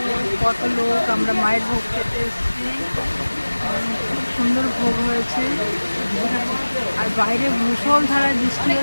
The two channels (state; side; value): inverted; both; correlation -1.00